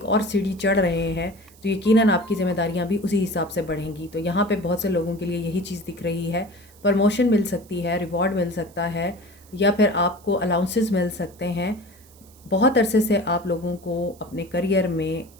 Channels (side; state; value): right; noise; hiss, 26 dB below the sound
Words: और सीढ़ी चढ़ रहे हैं तो यकीनन आपकी ज़िम्मेदारियाँ भी उसी हिसाब से बढ़ेंगी। तो यहाँ पे बहुत से लोगों के लिए यही चीज़ दिख रही है। प्रमोशन मिल सकती है, रिवॉर्ड मिल सकता है, या फिर आपको अलाउंसेस मिल सकते हैं। बहुत अरसे से आप लोगों को अपने करियर में